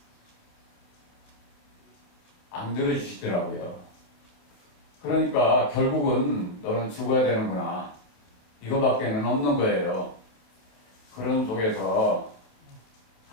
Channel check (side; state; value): right; late; 27 ms